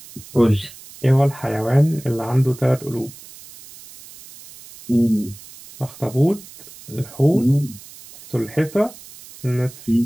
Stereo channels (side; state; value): right; noise; hiss, 19 dB below the sound